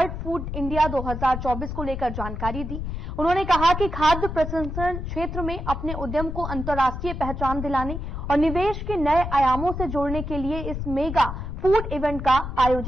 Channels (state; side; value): noise; left; rumble, 6 dB below the sound